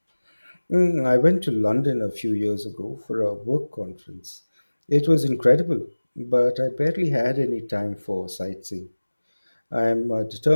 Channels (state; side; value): inverted; both; correlation -1.00